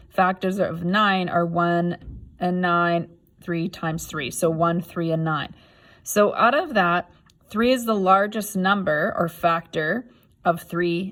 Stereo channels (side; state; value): both; identical; correlation 1.00